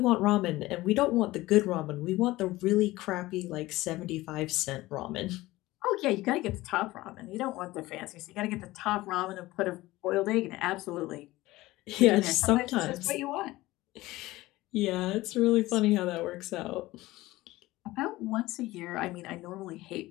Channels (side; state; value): right; quieter; 18.4 dB